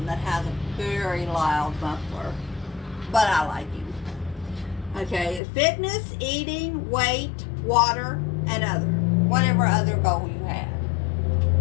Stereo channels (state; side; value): drops out; right; at 5.4 s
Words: that has a very loud muffler, but I like him. Okay, fitness, eating, weight, water, and whatever other goal you have.